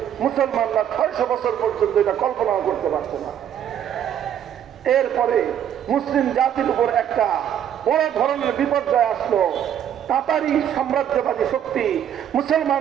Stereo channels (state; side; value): quieter; left; 9.8 dB